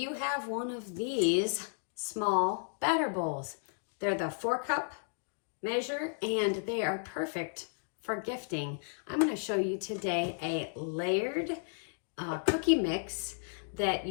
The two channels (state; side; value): silent; right; digital silence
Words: have one of these small batter bowls. They're the 4-cup measure and they are perfect for gifting. I'm going to show you today a layered cookie mix that